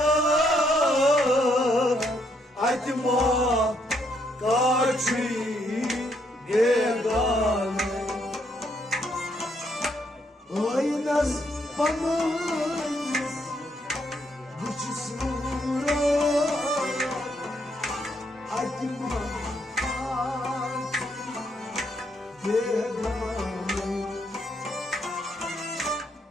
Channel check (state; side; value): normal; both; correlation 0.74